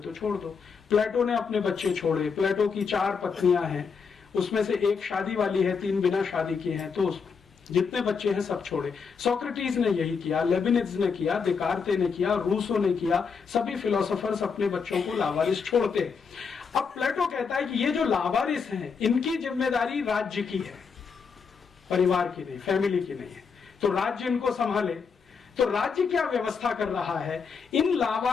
तो छोड़ दो। प्लेटो ने अपने बच्चे छोड़े। प्लेटो की 4 पत्नियां हैं, उसमें से एक शादी वाली है, 3 बिना शादी की हैं, तो जितने बच्चे हैं सब छोड़े। सोक्रेटिस ने यही किया, लेबिनिज ने किया, देकार्ते ने किया, रूसो ने किया। सभी फिलोसोफर्स अपने बच्चों को लावारिस छोड़ते हैं। अब प्लेटो कहता है कि ये जो लावारिस हैं, इनकी जिम्मेदारी राज्य की है, परिवार की नहीं, फैमिली की नहीं है। तो राज्य इनको संभाले। तो राज्य क्या व्यवस्था कर रहा है? इन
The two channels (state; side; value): quieter; right; 5.7 dB